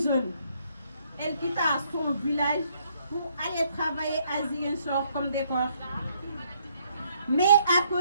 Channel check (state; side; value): inverted; both; correlation -0.70